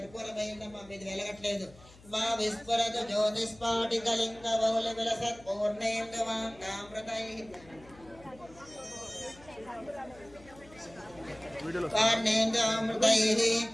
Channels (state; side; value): noise; left; hum, 23 dB below the sound